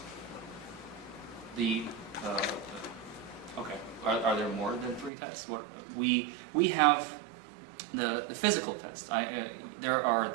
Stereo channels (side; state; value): left; drops out; at 5.1 s